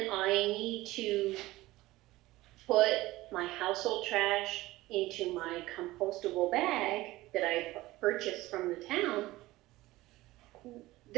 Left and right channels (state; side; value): quieter; left; 18.2 dB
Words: I need to put my household trash into my compostable bag that I purchased from the town,